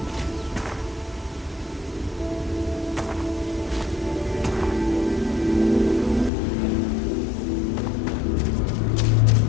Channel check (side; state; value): right; drops out; at 6.3 s